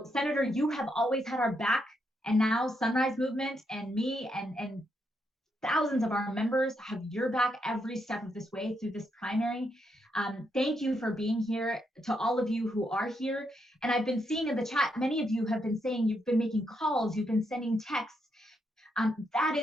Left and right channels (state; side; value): normal; both; correlation 0.79